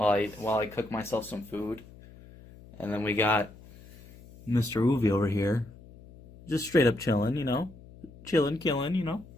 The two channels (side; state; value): left; noise; hum, 21 dB below the sound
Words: I cook myself some food. And then we got Mr. Uvi over here, just straight up chilling, killing,